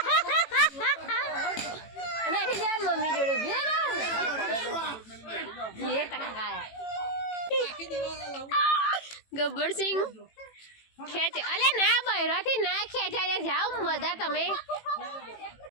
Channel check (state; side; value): late; right; 18 ms